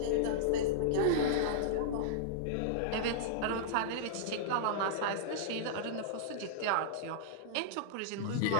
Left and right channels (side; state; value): both; different; correlation -0.02